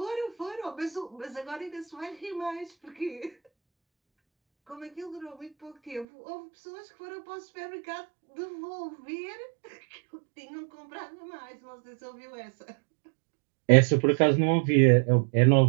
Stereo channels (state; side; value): drops out; left; at 6.1 s